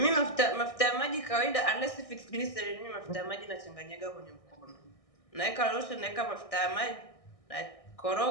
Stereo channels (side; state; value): right; late; 1.6 ms